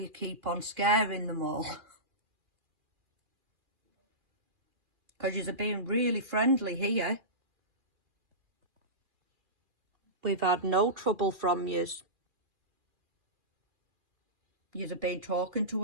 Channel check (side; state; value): left; late; 2.4 ms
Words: keep on scaring them all. Because you're being really friendly here. We've had no trouble from yous. You've been talking